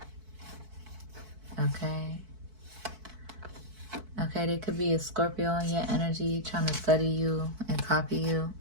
Okay. Okay, there could be a Scorpio in your energy trying to study you and copy you.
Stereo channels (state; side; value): late; left; 4.6 ms